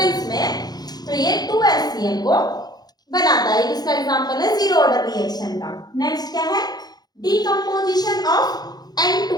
में, तो ये 2HCl को बनाता है। इसका एग्जांपल है जीरो ऑर्डर रिएक्शन का। नेक्स्ट क्या है, decomposition of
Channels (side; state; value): right; late; 0.19 ms